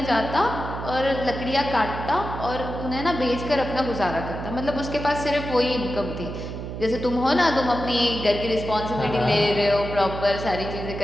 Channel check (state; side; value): noise; right; hum, 7 dB below the sound